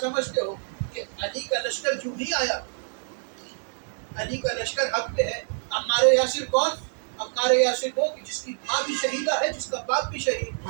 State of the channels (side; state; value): left; silent; 58 dB below the other